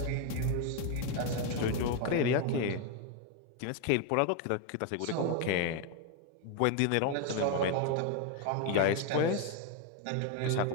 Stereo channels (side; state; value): both; different; correlation 0.01